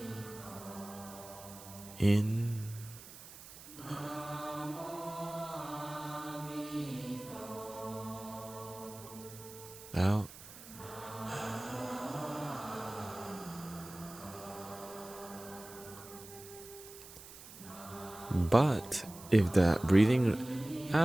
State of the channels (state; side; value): noise; right; hiss, 16 dB below the sound